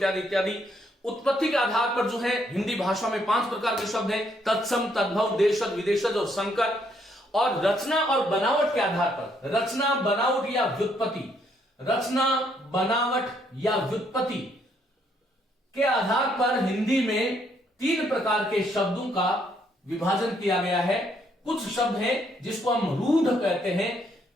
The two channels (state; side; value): normal; both; correlation 0.71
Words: इत्यादि। उत्पत्ति के आधार पर जो है हिंदी भाषा में 5 प्रकार के शब्द हैं, तत्सम, तद्भव, देशज, विदेशज और संकर। और रचना और बनावट के आधार पर, रचना, बनावट या व्युत्पत्ति, रचना, बनावट या व्युत्पत्ति के आधार पर हिंदी में 3 प्रकार के शब्दों का विभाजन किया गया है। कुछ शब्द हैं जिसको हम रूढ़ कहते हैं,